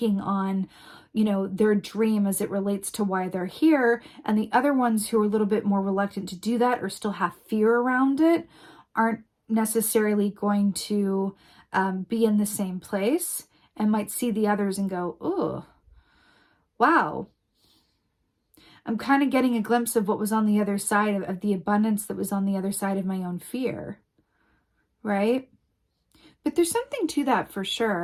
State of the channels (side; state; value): both; identical; correlation 1.00